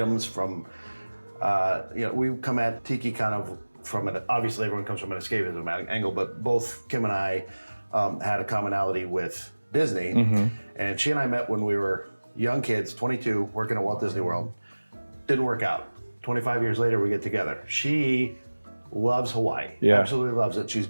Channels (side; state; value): both; inverted; correlation -1.00